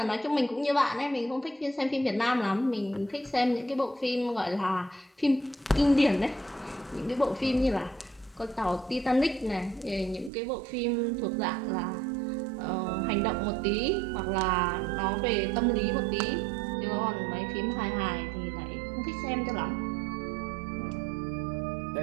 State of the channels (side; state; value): left; drops out; at 10.3 s